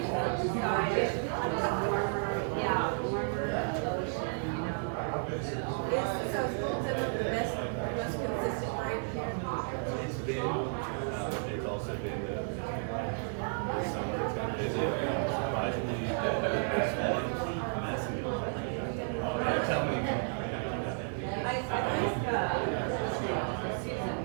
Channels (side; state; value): left; silent; 56 dB below the other